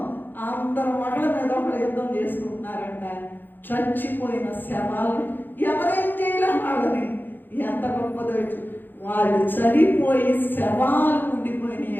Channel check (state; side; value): late; right; 0.092 ms